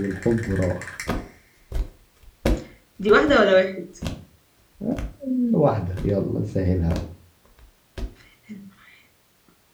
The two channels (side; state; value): both; identical; correlation 1.00